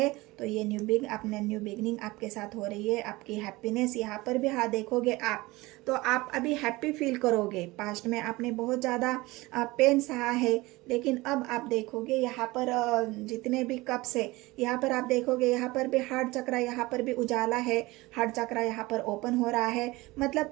तो ये न्यू बिगनिंग आपके साथ हो रही है। आपकी हैप्पीनेस यहाँ पर भी हाँ देखोगे आप, तो आप अभी हैप्पी फील करोगे। पास्ट में आपने बहुत ज़्यादा पेन सहा है, लेकिन अब आप देखोगे यहाँ पर जितने भी कप्स है, यहाँ पर आप देखोगे यहाँ पर भी हार्ट चक्र, यहाँ पर भी उजाला है, हार्ट चक्र यहाँ पर ओपन हो रहा है।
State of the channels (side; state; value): left; quieter; 21.1 dB